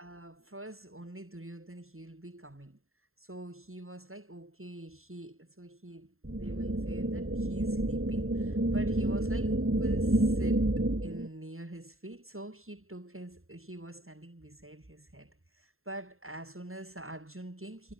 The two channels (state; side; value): late; left; 0.61 ms